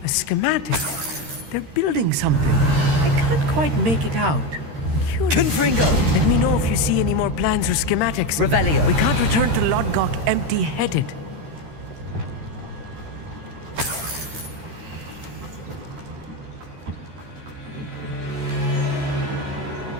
a schematic. They're building something. I can't quite make it out. Curious. Confringo! Let me know if you see any more plans or schematics. Revelio. We can't return to Lodgok empty-headed.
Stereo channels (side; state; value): left; late; 13 ms